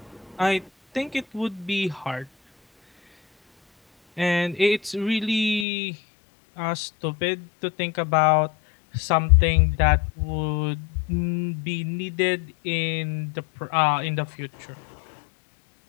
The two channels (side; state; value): right; drops out; at 5.7 s